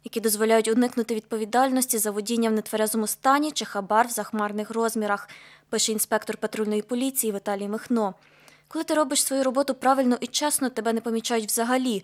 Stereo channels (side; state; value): both; identical; correlation 1.00